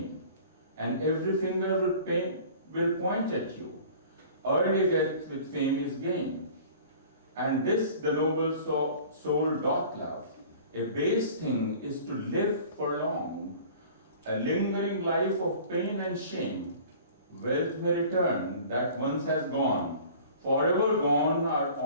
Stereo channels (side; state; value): both; inverted; correlation -0.46